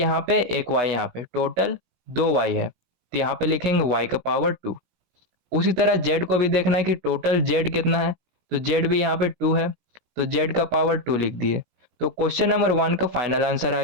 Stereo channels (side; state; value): left; late; 17 ms